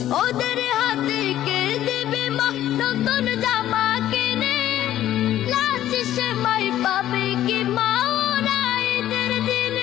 ওদের হাতে কে দেবে মা নতুন জামা কিনে, লাজ সে মাই পাবে কি মা ওরা ঈদের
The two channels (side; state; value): right; quieter; 12.6 dB